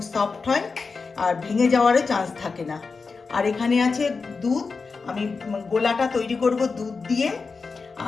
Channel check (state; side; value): quieter; right; 4.6 dB